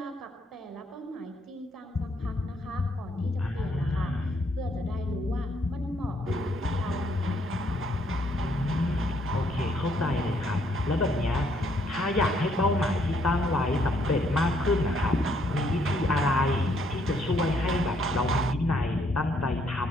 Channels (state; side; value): normal; both; correlation 0.69